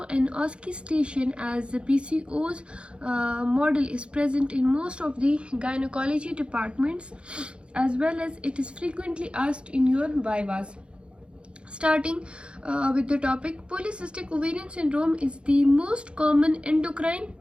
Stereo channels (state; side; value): late; left; 0.057 ms